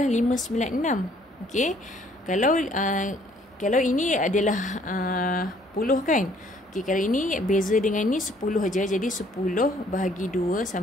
596. Okey, kalau ini adalah 10 kan? Okey, kalau ini beza dengan ni 10 aja. Jadi 10 bahagi 2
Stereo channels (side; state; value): both; normal; correlation 0.62